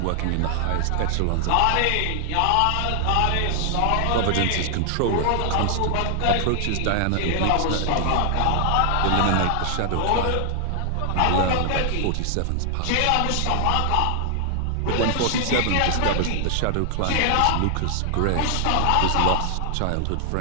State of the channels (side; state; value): both; different; correlation 0.00